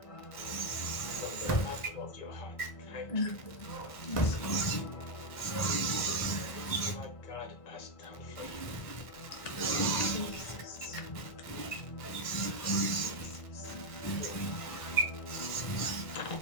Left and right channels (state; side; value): late; right; 1.6 ms